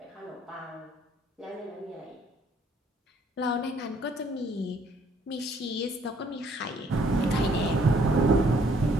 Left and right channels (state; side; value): normal; both; correlation 0.64